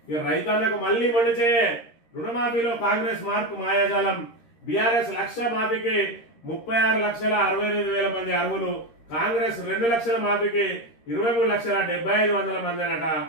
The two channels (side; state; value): right; late; 13 ms